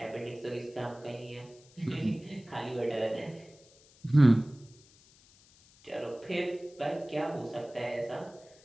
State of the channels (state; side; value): noise; left; hiss, 27 dB below the sound